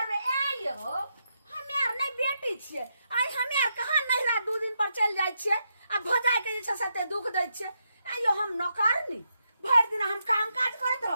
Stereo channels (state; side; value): inverted; both; correlation -0.83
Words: ए यो हमे आर नै बेटी छियै आइ हमे आर कहां नहिरा 2 दिन पर चल जाय छियै आ भजाय के जे छै से दुख दै छियै आइयो हम नौकरनी भैर दिन हम काम काज करत